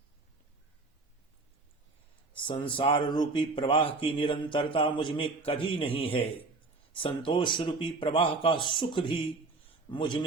संसार रूपी प्रवाह की निरंतरता मुझ में कभी नहीं है। संतोष रूपी प्रवाह का सुख भी मुझ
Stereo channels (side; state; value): left; quieter; 3.6 dB